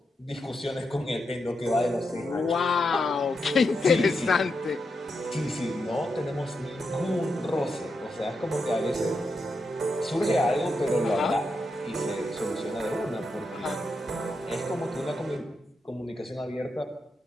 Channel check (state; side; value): normal; both; correlation 0.85